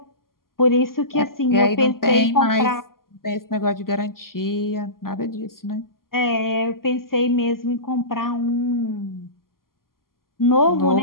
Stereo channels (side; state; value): right; late; 0.92 ms